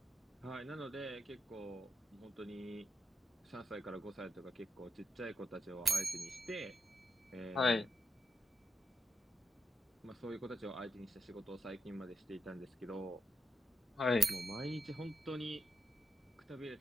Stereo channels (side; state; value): both; normal; correlation 0.85